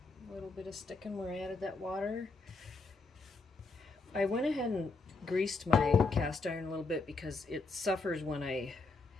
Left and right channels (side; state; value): right; quieter; 3.8 dB